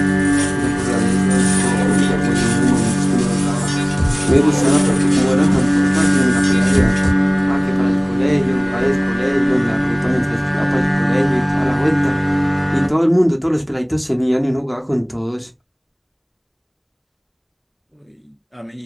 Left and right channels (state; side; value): identical; both; correlation 1.00